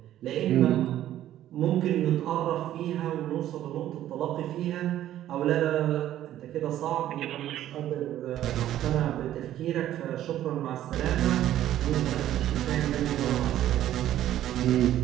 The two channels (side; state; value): left; quieter; 12.5 dB